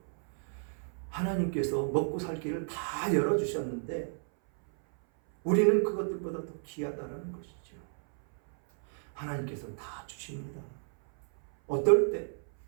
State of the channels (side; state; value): left; silent; 57 dB below the other